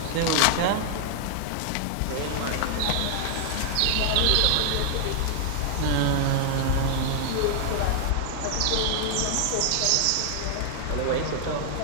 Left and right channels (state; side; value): different; both; correlation 0.00